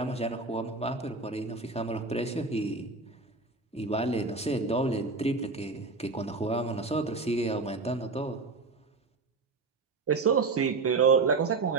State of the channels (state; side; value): quieter; left; 3.9 dB